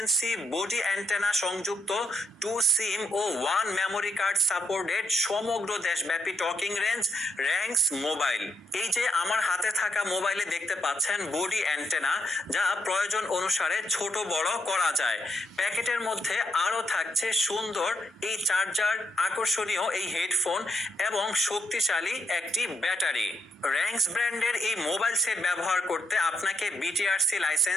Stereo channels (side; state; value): both; normal; correlation 0.76